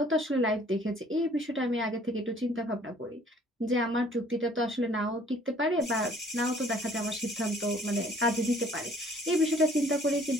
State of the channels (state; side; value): normal; both; correlation 0.57